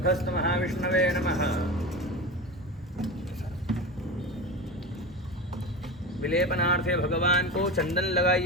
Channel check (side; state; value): both; normal; correlation 0.26